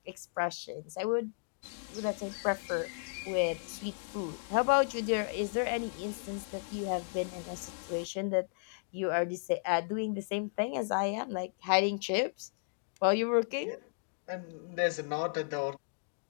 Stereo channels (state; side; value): silent; right; digital silence